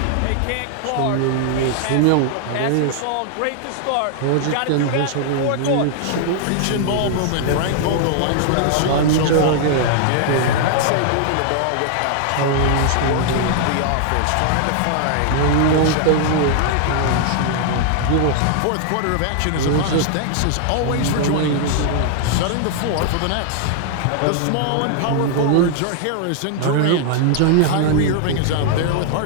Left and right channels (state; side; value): different; both; correlation 0.00